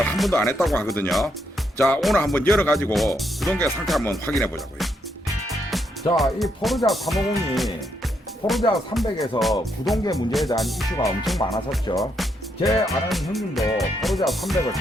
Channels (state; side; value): normal; both; correlation 0.77